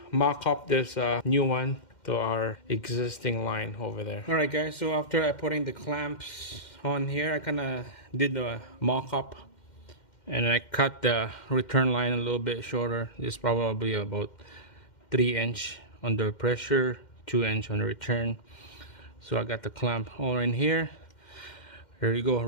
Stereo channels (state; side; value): late; right; 2.1 ms